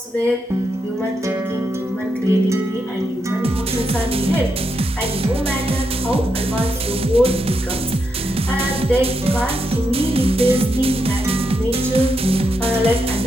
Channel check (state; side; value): normal; both; correlation 0.83